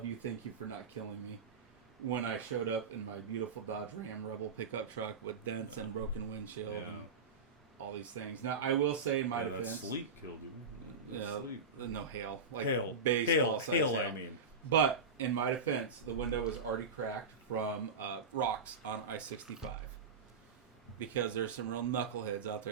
you. Thank you for not killing me. When I showed up in my beautiful Dodge Ram Rebel pickup truck with dents and broken windshield and all these things. Now, I will say in my defense... That sleep killed you. No, hail. Hail. Baseball hail, I mean. But, in my defense, the window was already cracked from rocks on I-65. Because there's some real knuckleheads out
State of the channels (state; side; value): quieter; left; 4.3 dB